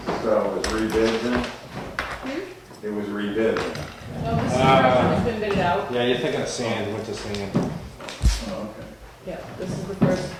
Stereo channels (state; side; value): identical; both; correlation 1.00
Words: So it was rebid then? It was rebid. No, this is has been bidded out. Yeah, you're thinking of sand, winter sand. Oh, okay. Yeah, this is the first